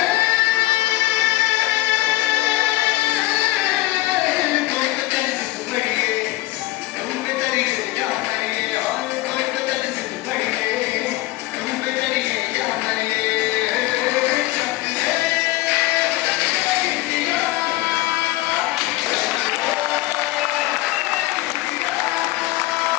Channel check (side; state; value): right; quieter; 18.3 dB